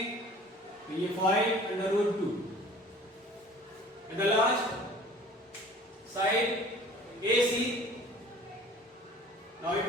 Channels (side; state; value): both; normal; correlation 0.47